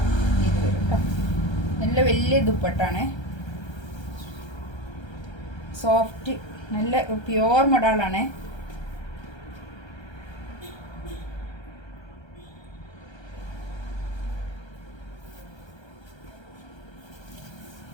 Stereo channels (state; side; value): late; right; 1.3 ms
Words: ഇത് വരും കേട്ടോ. നല്ല വലിയ ദുപ്പട്ടാണ്, സോഫ്റ്റ്, നല്ല പ്യുവർ മൊഡാളാണ്.